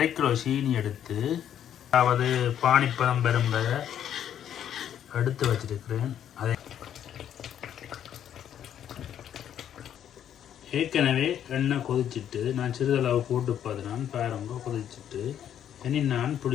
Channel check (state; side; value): quieter; right; 9.9 dB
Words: கிலோ சீனி எடுத்து, அதாவது பானிப்பதம் பெரும்பதை எடுத்து வச்சிருக்கிறேன். அதை ஏற்கனவே எண்ணெய் கொதிச்சுட்டு நான் சிறிதளவு போட்டு பார்த்துனான் பாருங்க, கொதிச்சுட்டு இனி நான்